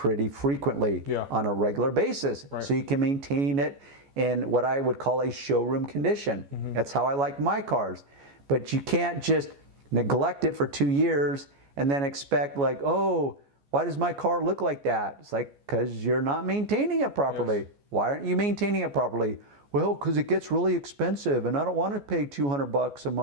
frequently Yeah. on a regular basis. Right. So you can maintain it in what I would call a showroom condition. That's how I like my cars. But you can't just neglect it for 2 years and then expect like, oh, why does my car look like that? It's like, because you're not maintaining it properly. Yes. Why aren't you maintaining it properly? Well, because it gets really expensive and I don't want to pay $200 a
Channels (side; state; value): left; late; 14 ms